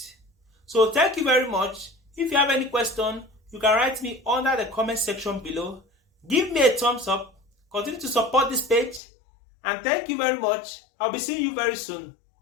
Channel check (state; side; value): drops out; right; at 9.0 s